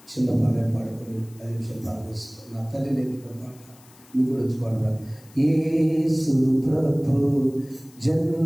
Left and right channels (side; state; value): left; noise; hiss, 26 dB below the sound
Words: చిన్న పాట పాడుకొని 5 నిమిషాలు ప్రార్థిస్తాం. నా తల్లి నేర్పిన పాట మీకు కూడా వచ్చి పాడరా. యేసు ప్రభు